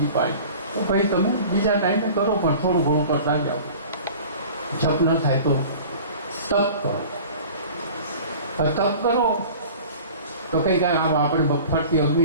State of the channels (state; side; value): inverted; both; correlation -0.42